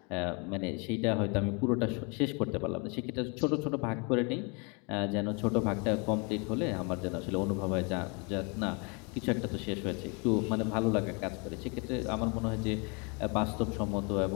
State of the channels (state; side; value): quieter; right; 32.7 dB